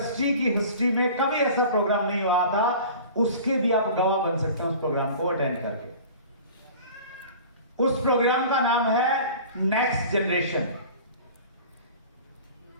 की हिस्ट्री में कभी ऐसा प्रोग्राम नहीं हुआ था, उसके भी आप गवाह बन सकते हैं उस प्रोग्राम को अटेंड करके। उस प्रोग्राम का नाम है नेक्स्ट जनरेशन।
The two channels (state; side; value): inverted; both; correlation -0.41